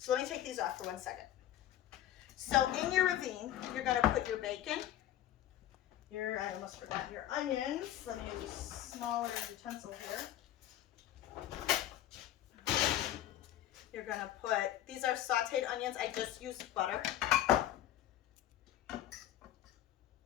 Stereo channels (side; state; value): right; quieter; 12.5 dB